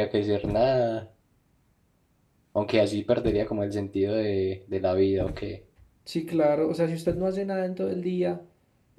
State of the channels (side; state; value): both; identical; correlation 1.00